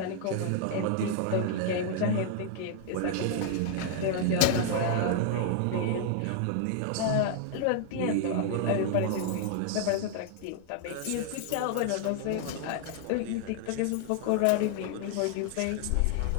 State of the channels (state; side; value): different; both; correlation 0.00